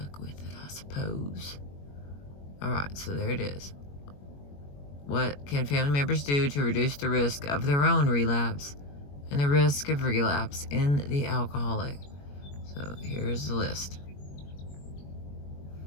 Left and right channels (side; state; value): right; late; 21 ms